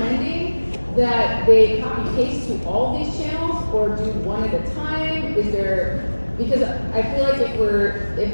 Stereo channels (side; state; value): both; inverted; correlation -1.00